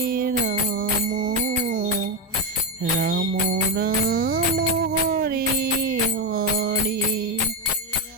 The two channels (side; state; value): both; normal; correlation 0.10